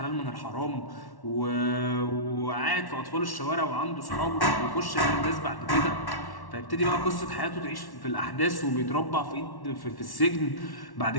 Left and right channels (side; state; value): right; late; 1.1 ms